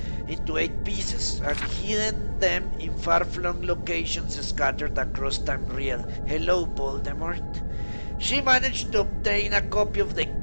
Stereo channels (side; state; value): both; inverted; correlation -1.00